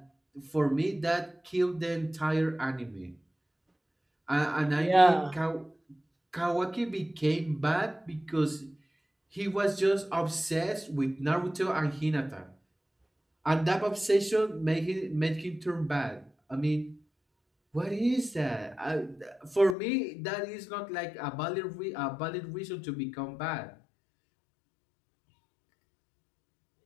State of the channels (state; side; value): drops out; right; at 19.8 s